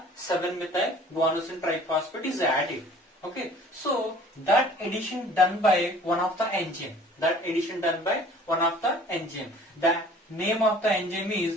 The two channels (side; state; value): both; normal; correlation 0.50